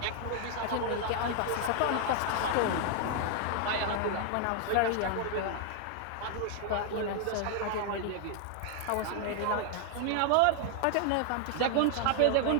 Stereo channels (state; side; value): different; both; correlation 0.00